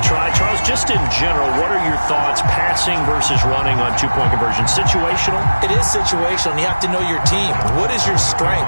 try. Charles, just in general, what are your thoughts passing versus running on 2-point conversion? Situational? It is situational, and you have to know your team. What is your strength?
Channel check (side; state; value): both; inverted; correlation -1.00